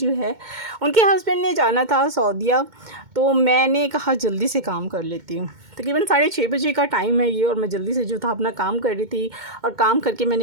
है, उनके हस्बैंड ने जाना था सऊदीया। तो मैंने कहा जल्दी से काम कर लेती हूँ। तकरीबन 6:30 बजे का टाइम है ये, और मैं जल्दी से जो था अपना काम कर रही थी। और काम करके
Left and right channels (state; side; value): late; left; 2.2 ms